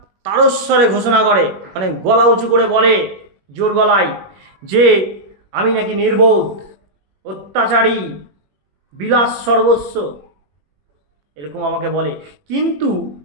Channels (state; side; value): late; left; 21 ms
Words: তারস্বরে ঘোষণা করে, মানে গলা উঁচু করে বলে জোর গলায় যে আমি নাকি নির্বোধ, অত্যাচারী, বিলাস সর্বস্ব, এরকম আমাকে বলে, কিন্তু